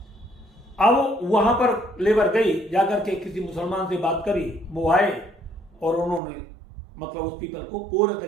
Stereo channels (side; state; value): left; drops out; at 6.2 s